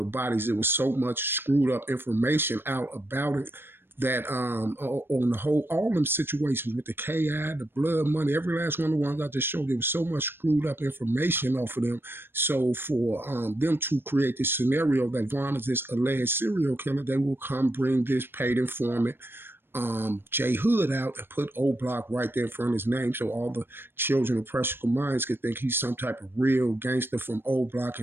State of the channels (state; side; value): late; left; 0.10 ms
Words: bodies. It was so much screwed up information out about it that on the whole, all them situations with the KI, the blood money, every last one of the ones I just showed, there was so much screwed up information off of them. So for them to create this scenario that Vaughn is this alleged serial killer, they will come bring this paid informant J Hood out and put O Block right there in front of his name, so all the children of practical minds could think he's some type of real gangster from O Block